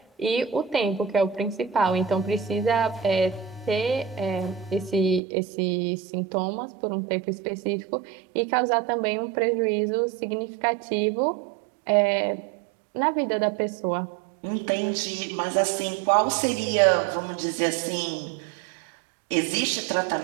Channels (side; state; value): left; drops out; at 5.2 s